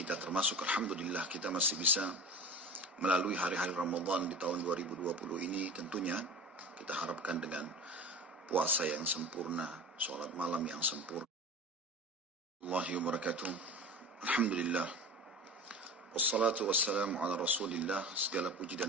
termasuk Alhamdulillah kita masih bisa melalui hari-hari Ramadan di tahun 2020 ini. Tentunya kita harapkan dengan puasa yang sempurna, sholat malam yang sempurna. Allahi wa barakatuh. Alhamdulillah. Wassalatu wassalamu ala rasulillah. Segala puji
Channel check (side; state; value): both; normal; correlation 0.33